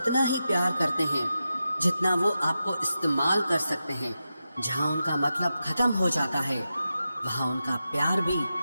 ही प्यार करते हैं जितना वो आपको इस्तेमाल कर सकते हैं। जहाँ उनका मतलब खत्म हो जाता है, वहाँ उनका प्यार भी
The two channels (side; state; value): both; inverted; correlation -0.90